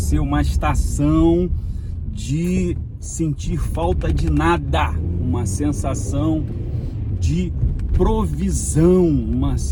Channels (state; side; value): identical; both; correlation 1.00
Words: uma estação de sentir falta de nada, uma sensação de provisão, uma